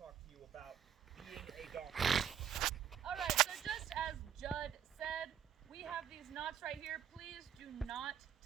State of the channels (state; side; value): quieter; left; 9.3 dB